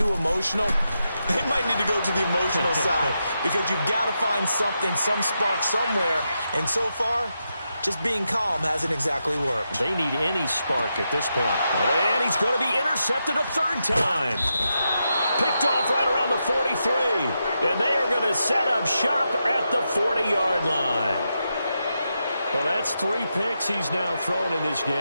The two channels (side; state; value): both; inverted; correlation -0.86